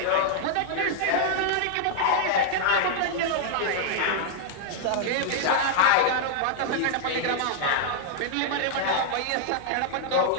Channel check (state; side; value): different; both; correlation -0.01